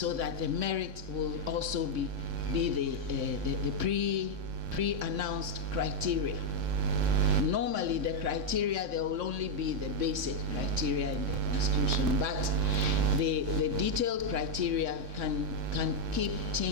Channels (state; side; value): late; left; 3.6 ms